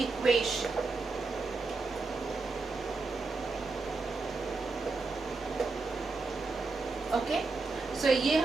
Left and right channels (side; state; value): left; quieter; 3.8 dB